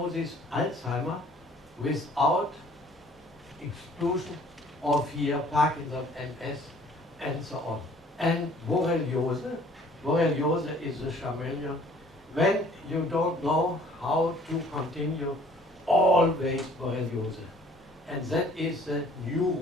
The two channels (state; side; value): normal; both; correlation 0.55